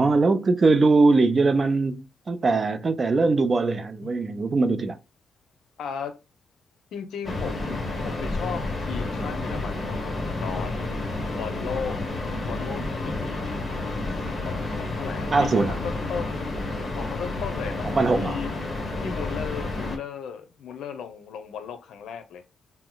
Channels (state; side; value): normal; both; correlation 0.87